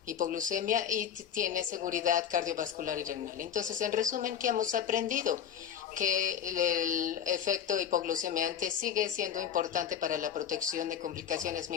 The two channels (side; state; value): right; quieter; 8.7 dB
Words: hipoglucemia y tiene seguridad cardiovascular y renal. Entonces, en resumen, ¿qué hemos aprendido? Que el efecto hipoglucemiante sigue siendo importante para la protección de complicaciones